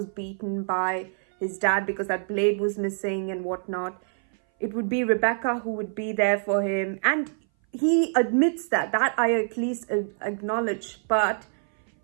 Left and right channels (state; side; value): silent; left; 58 dB below the other